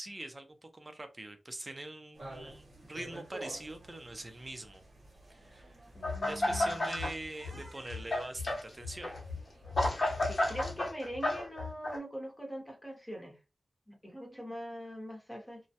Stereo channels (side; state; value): both; normal; correlation 0.92